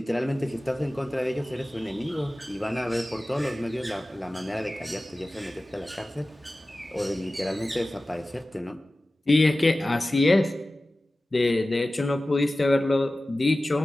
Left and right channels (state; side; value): normal; both; correlation 0.96